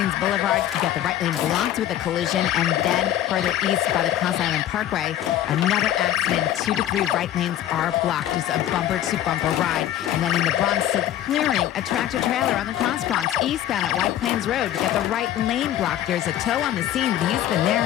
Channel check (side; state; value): right; quieter; 12.2 dB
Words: Boulevard, you got the right lane blocked with a collision, and then further east by the Cross Island Parkway, another accident. 2 to 3 right lanes are blocked. Just a bumper-to-bumper ride. And then in the Bronx, still clearing a tractor-trailer on the Cross Bronx eastbound at White Plains Road. You got the right lane blocked. There's a tow on the scene, but he's been